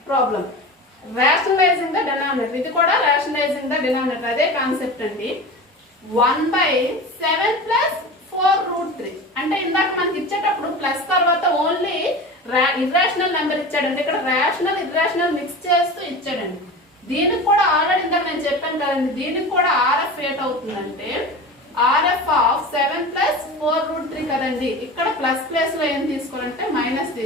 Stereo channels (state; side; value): normal; both; correlation 0.32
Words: problem. Rationalizing the denominator. ఇది కూడా rationalizing the denominator. అదే కాన్సెప్ట్ అండి. 1/7 plus 4 root 3. అంటే ఇందాక మనకి ఇచ్చేటప్పుడు ప్లస్ తర్వాత ఓన్లీ ఇర్రేషనల్ నెంబర్ ఇచ్చాడండి. ఇక్కడ రేషనల్ ఇర్రేషనల్ మిక్స్ చేస్తూ ఇచ్చాడండి. దీనికి కూడా ఆల్రెడీ ఇందాక నేను చెప్పాను కదండి, దీనికి కూడా RF ఏట్ అవుతుందంటే RF ఆఫ్ 7 plus 4 root 3 కదండి. ఇక్కడ ప్లస్ ప్లేస్ లో ఏం తీసుకోవాలంటే మైనస్